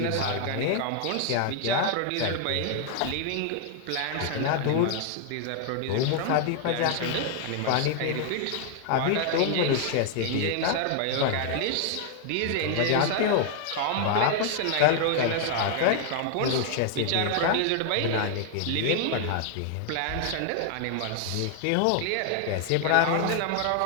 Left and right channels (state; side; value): different; both; correlation 0.00